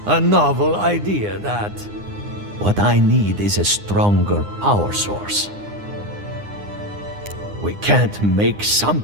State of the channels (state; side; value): late; left; 9.8 ms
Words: A novel idea, that. What I need is a stronger power source. We can't make